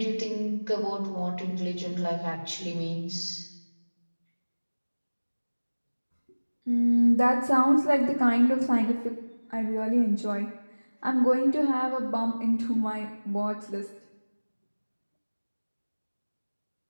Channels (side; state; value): both; inverted; correlation -1.00